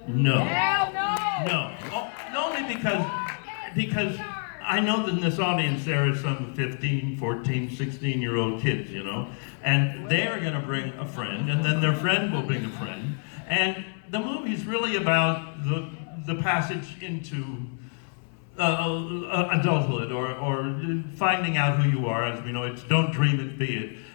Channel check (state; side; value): silent; right; 56 dB below the other